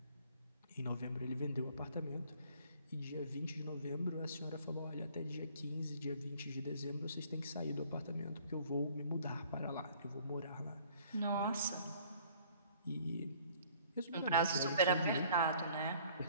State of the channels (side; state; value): both; inverted; correlation -0.56